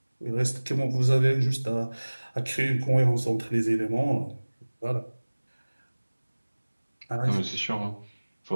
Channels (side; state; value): both; inverted; correlation -1.00